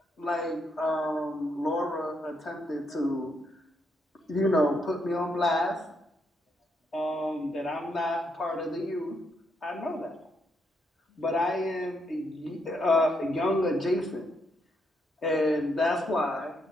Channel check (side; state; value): both; normal; correlation 0.77